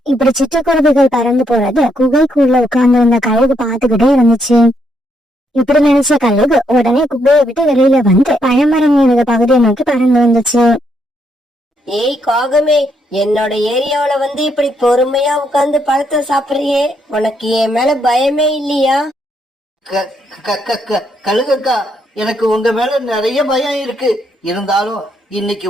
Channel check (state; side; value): normal; both; correlation 0.75